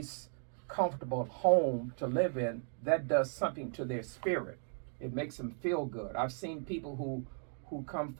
comfortable home to live in, that does something to their spirit. It makes them feel good. I've seen people who come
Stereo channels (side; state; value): left; silent; 54 dB below the other